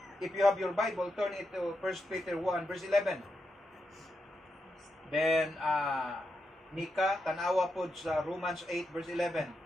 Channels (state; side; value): normal; both; correlation 0.85